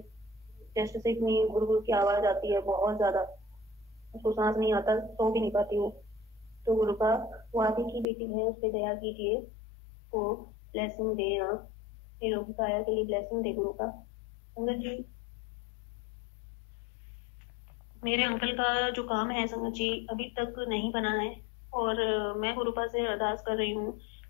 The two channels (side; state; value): right; drops out; at 8.1 s